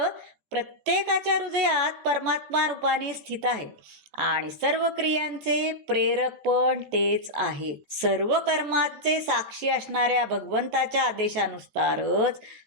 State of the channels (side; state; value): left; late; 14 ms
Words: प्रत्येकाच्या हृदयात परमात्मा रूपाने स्थित आहे आणि सर्व क्रियांचे प्रेरक पण तेच आहेत. सर्व कर्माचे साक्षी असणाऱ्या भगवंताच्या आदेशानुसारच